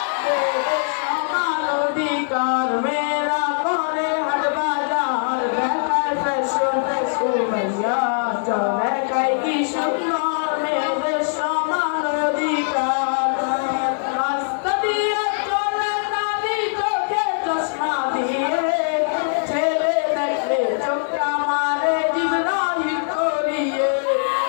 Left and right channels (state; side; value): silent; right; digital silence